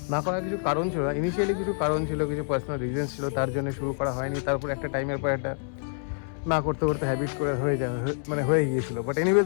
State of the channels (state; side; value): silent; right; 60 dB below the other